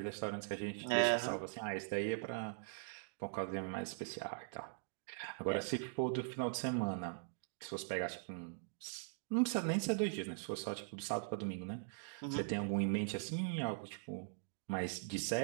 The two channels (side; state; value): left; silent; digital silence